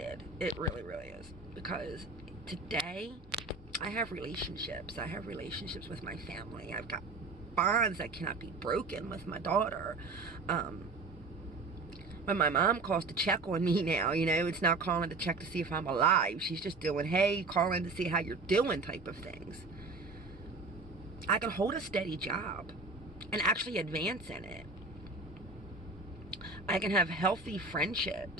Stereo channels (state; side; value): quieter; left; 3.7 dB